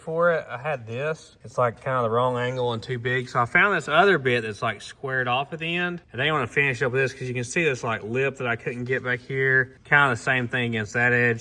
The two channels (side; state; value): both; identical; correlation 1.00